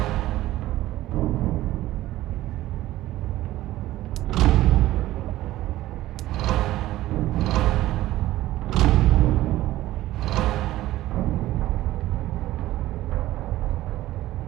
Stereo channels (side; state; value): left; quieter; 15.5 dB